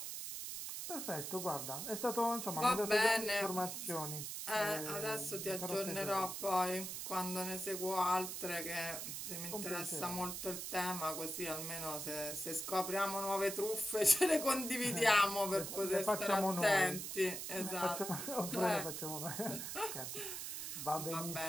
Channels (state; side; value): noise; right; hiss, 5 dB below the sound